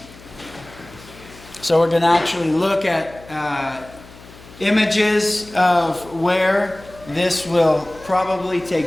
So we're going to actually look at images of where this will probably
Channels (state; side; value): noise; left; hum, 21 dB below the sound